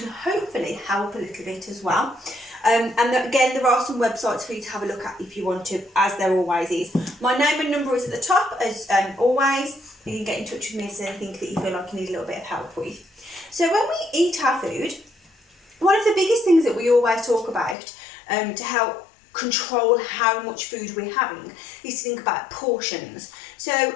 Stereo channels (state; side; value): drops out; right; at 17.8 s